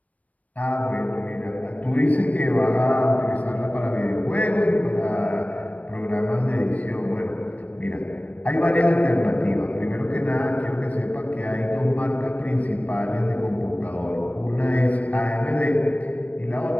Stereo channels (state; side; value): late; right; 0.070 ms